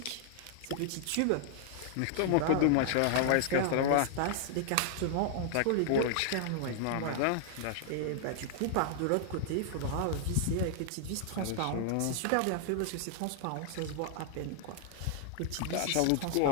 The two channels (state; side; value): different; both; correlation 0.00